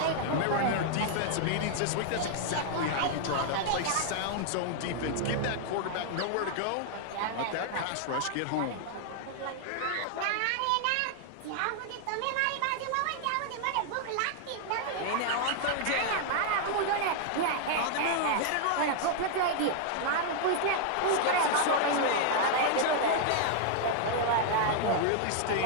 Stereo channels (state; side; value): different; both; correlation -0.01